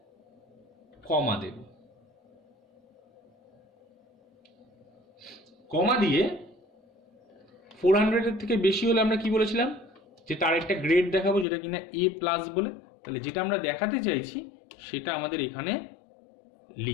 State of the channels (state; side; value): drops out; right; at 11.5 s